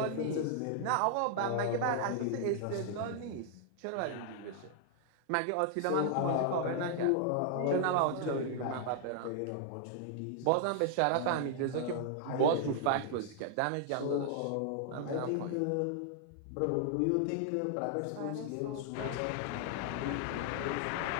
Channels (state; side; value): different; both; correlation 0.00